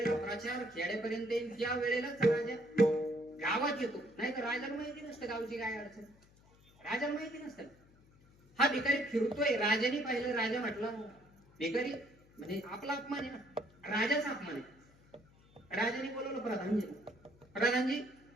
प्रचार खेड्यापर्यंत येईल त्या वेळेलाच राजा गावात येतो, नाही तर राजाला माहिती नसतं गावची काय अडचण, राजाला माहिती नसतं. हा भिकारी फिरतोय, राजाने पाहिलं. राजा म्हटला भिकारी म्हणजे आपला अपमान आहे ना, राजाचा अपमान आहे. राजाने बोलवलं प्रधानजी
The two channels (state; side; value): noise; left; hum, 28 dB below the sound